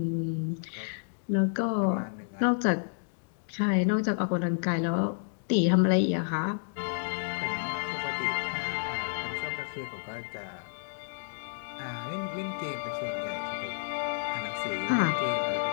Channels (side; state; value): right; silent; digital silence